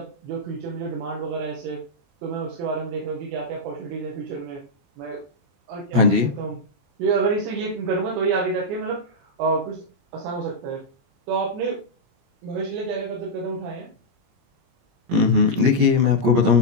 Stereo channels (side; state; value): left; late; 22 ms